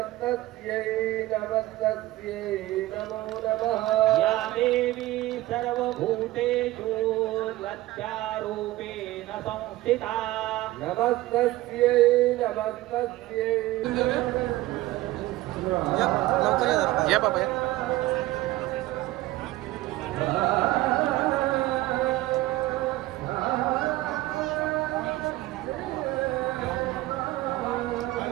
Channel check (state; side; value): quieter; left; 17.1 dB